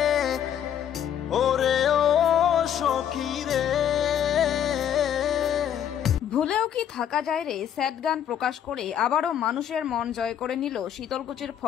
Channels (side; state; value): right; quieter; 9.6 dB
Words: ওরে ও সখী রে। ভুলেও কি থাকা যায় রে স্যাড গান প্রকাশ করে আবারও মানুষের মন জয় করে নিল শীতলকুচির